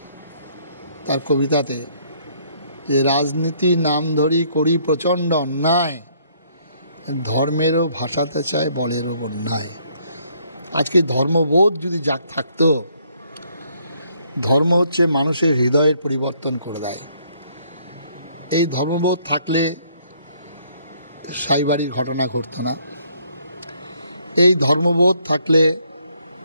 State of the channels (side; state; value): both; inverted; correlation -0.67